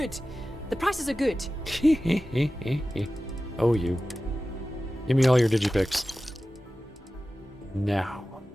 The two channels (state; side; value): normal; both; correlation 0.95